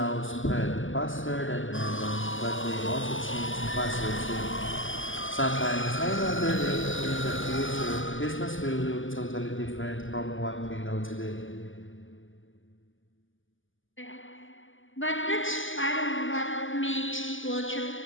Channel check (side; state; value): right; late; 0.58 ms